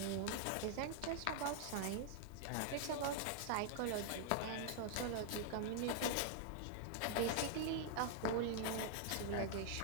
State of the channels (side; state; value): both; different; correlation 0.00